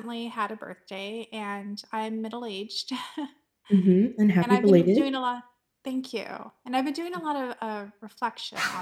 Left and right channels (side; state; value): both; identical; correlation 1.00